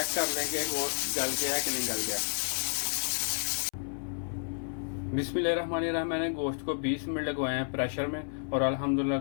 कर लेंगे गोश्त गल गया कि नहीं गल गया। बिस्मिल्लाहिर्रहमानिर्रहीम। मैंने गोश्त को 20 मिनट लगवाए हैं प्रेशर में और अल्हम्दुलिल्लाह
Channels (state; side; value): silent; right; 57 dB below the other